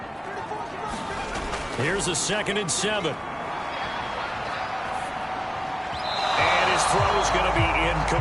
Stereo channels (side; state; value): both; identical; correlation 1.00